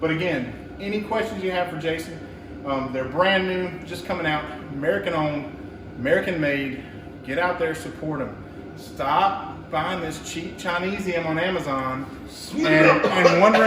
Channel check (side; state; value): both; identical; correlation 1.00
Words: But again, any questions you have for Jason, they're brand new, just coming out, American owned. American made. Get out there, support them. Stop buying this cheap Chinesium on Amazon and